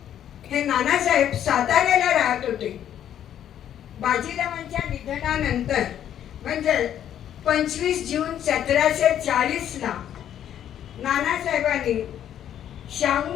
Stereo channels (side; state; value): right; quieter; 10.4 dB